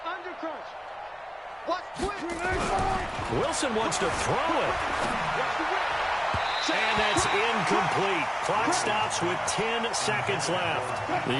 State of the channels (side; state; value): both; identical; correlation 1.00